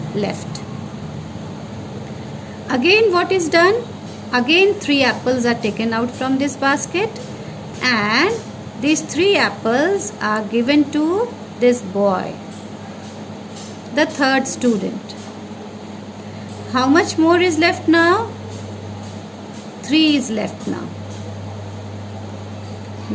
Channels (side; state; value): both; identical; correlation 1.00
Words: left. Again what is done? Again 3 apples are taken out from this basket, and these 3 apples are given to this boy, the third student. How much more is left now? 3 is left now.